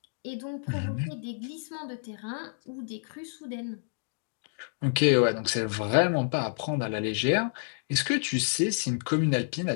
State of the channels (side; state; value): right; silent; digital silence